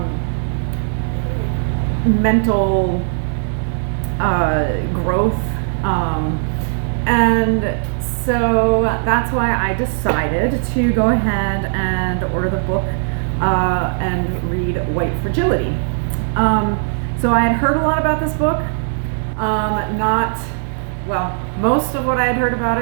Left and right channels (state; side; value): silent; left; 64 dB below the other